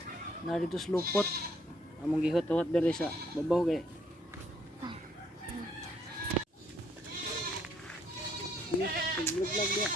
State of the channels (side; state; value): both; normal; correlation 0.68